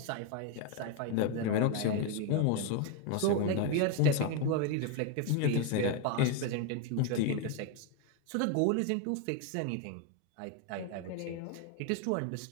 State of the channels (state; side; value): different; both; correlation 0.01